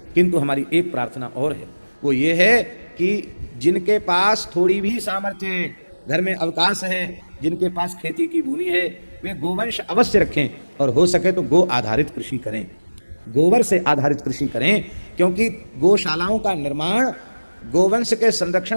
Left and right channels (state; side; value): inverted; both; correlation -1.00